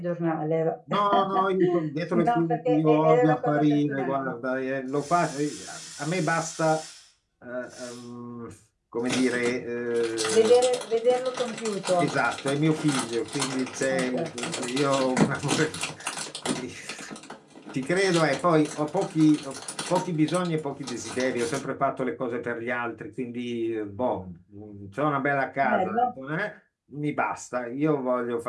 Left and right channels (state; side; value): identical; both; correlation 1.00